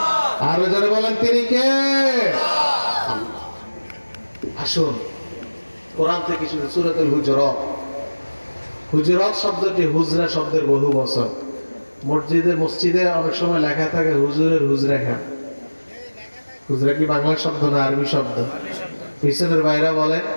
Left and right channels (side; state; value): both; inverted; correlation -1.00